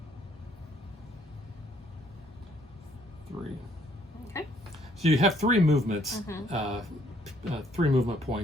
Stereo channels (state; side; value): normal; both; correlation 0.65